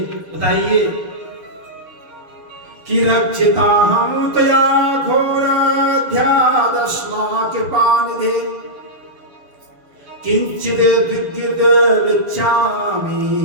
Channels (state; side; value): late; left; 6.7 ms